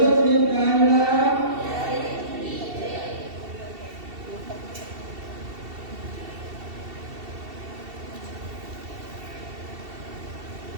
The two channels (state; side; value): late; left; 2.7 ms